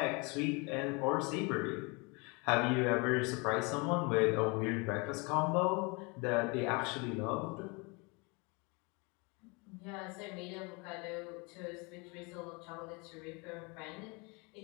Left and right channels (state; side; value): quieter; right; 29.5 dB